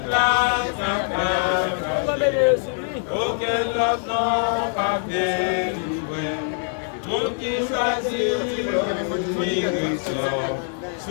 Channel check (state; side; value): silent; right; 63 dB below the other